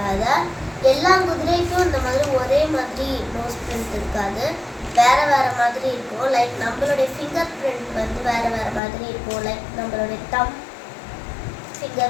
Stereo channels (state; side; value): drops out; right; at 8.8 s